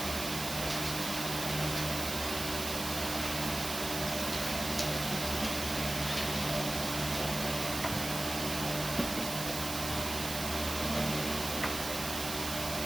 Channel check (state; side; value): noise; right; hiss, 5 dB below the sound